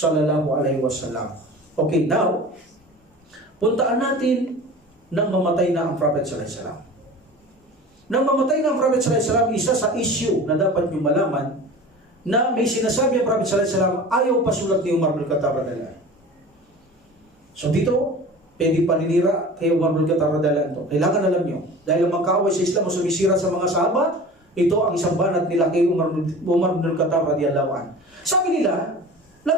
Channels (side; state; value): both; normal; correlation 0.38